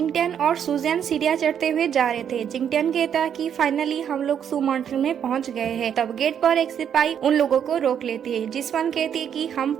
और सुजैन सीढ़ियां चढ़ते हुए जा रहे थे। जिंगटियन कहता कि फाइनली हम लोग सू माउंटेन में पहुंच गए हैं। तब गेट पर एक सिपाही उन लोगों को रोक लेती है। जिसवन कहती है कि हम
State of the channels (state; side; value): quieter; left; 8.6 dB